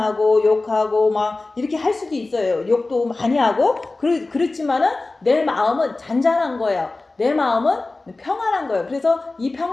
욕하고 막 이렇게 할 수도 있어요. 욕도 많이 하고 그렇지만은 내 마음은 잔잔한 거예요. 내 마음은 평안한 거예요. 그래서 이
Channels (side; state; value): right; quieter; 3.3 dB